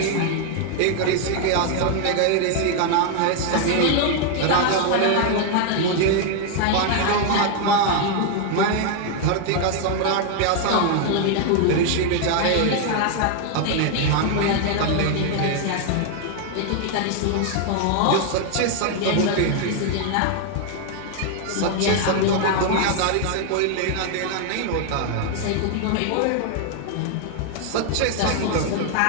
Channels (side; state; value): both; different; correlation 0.00